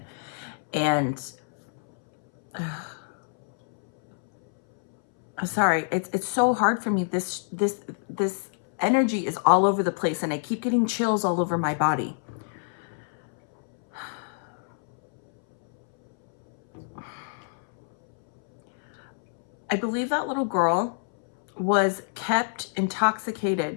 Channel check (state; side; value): silent; right; 61 dB below the other